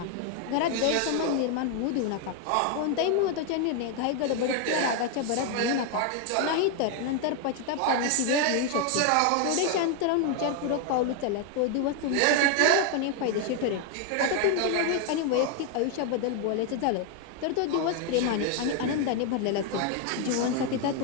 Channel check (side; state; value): both; different; correlation 0.01